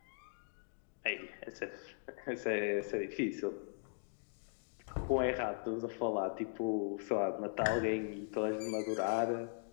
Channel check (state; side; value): silent; right; digital silence